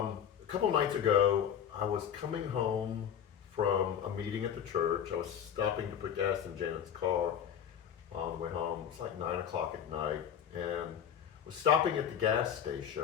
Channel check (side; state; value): right; quieter; 8.7 dB